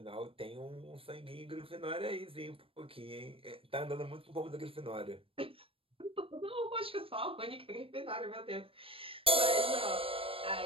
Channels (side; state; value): left; late; 0.27 ms